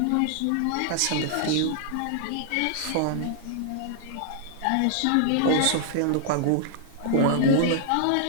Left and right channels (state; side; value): different; both; correlation -0.01